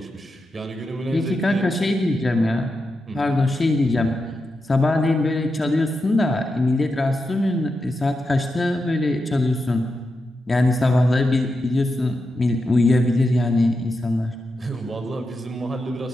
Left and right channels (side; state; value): both; normal; correlation 0.88